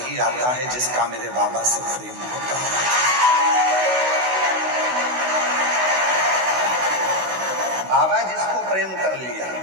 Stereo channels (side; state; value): left; late; 16 ms